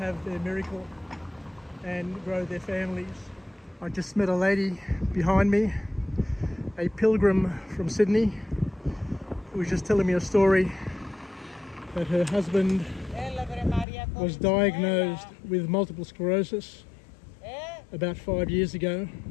their miracle and grow their families. I just met a lady behind me, a pilgrim from Sydney, who was just telling me a story that her husband was diagnosed with multiple sclerosis about 5 years ago,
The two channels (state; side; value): drops out; right; at 13.9 s